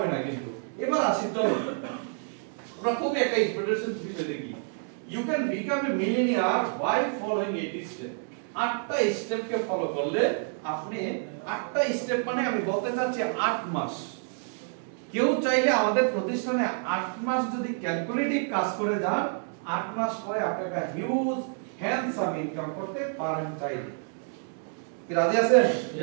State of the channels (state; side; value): silent; left; 59 dB below the other